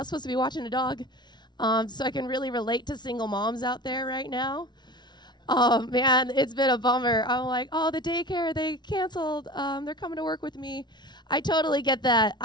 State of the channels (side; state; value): right; late; 0.21 ms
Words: supposed to be watching a dog, so I can really relate to single moms out there right now. Man, it's been a bummer. I'm like, oh, the daycare, they canceled. They're coming to work with me. I totally get that.